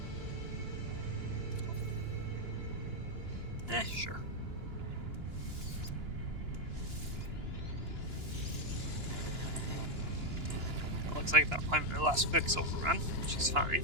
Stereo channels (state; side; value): late; left; 2.9 ms